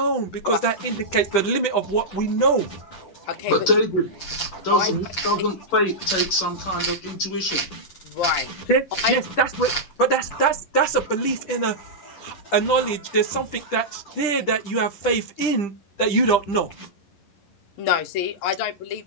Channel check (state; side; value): late; right; 10 ms